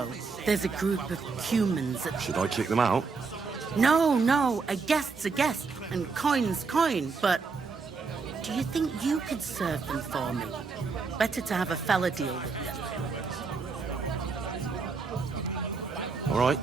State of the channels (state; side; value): quieter; left; 4.7 dB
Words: there's a group of Cumans that... Should I kick them out? No, a guest's a guest, and coin's coin, but... Do you think you could serve them for me? Better to have a fella deal with you. All right.